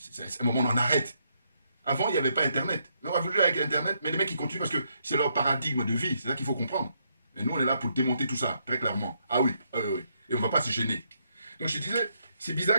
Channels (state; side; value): inverted; both; correlation -0.75